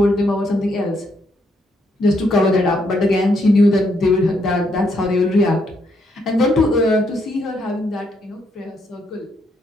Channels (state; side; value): normal; both; correlation 0.75